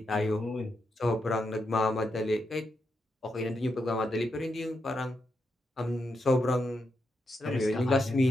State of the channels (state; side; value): normal; both; correlation 0.84